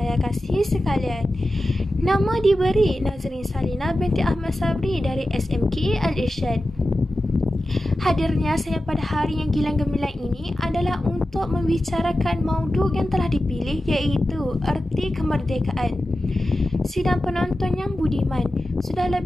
kasihi sekalian. Nama diberi Nazrin Salina binti Ahmad Sabri dari SMK Al-Irsyad. Hadirnya saya pada hari yang gilang gemilang ini adalah untuk membicarakan maudhu yang telah dipilih, iaitu erti kemerdekaan. Sidang penonton yang budiman, sudah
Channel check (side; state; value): both; normal; correlation 0.93